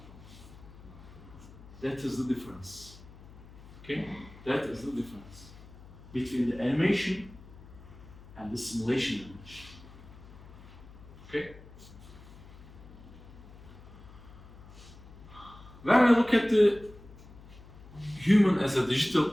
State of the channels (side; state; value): left; noise; hum, 19 dB below the sound